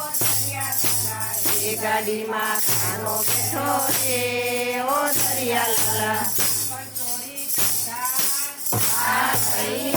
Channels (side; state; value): both; identical; correlation 1.00